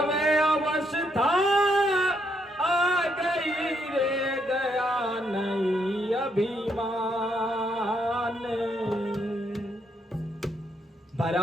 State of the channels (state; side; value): normal; both; correlation 0.75